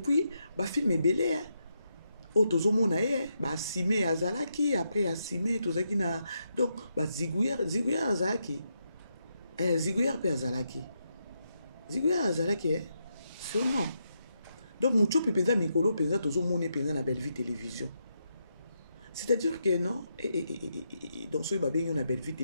bafilm ebele o tozomona ye baasime azalaki après asime tozalaki na donc baziguyer azalaki ziguyer pe azalaki sûrement donc Muchopi penza mikolo penza tozomona penza na Belle Vie Télévision. C'est-à-dire que non, dans ce babé on a Belle Vie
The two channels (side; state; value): both; inverted; correlation -0.82